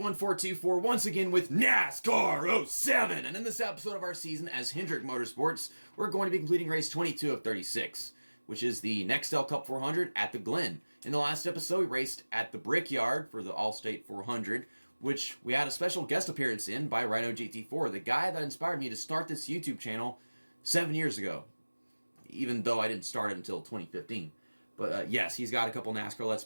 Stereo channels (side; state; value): both; inverted; correlation -1.00